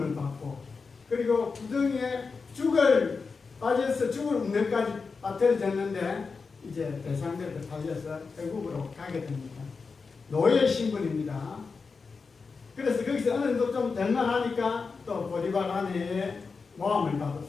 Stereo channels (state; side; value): quieter; right; 4.8 dB